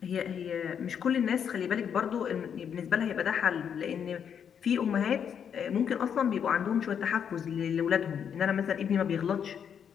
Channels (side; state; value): right; quieter; 7.9 dB